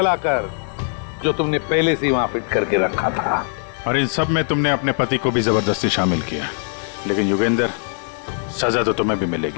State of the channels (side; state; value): right; silent; 65 dB below the other